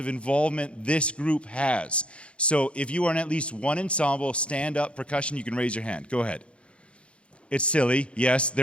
involvement this group has. So if you are in at least one ensemble, stand up, percussion, you can raise your hand. Go ahead. It's silly. Yes,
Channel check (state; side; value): late; right; 0.059 ms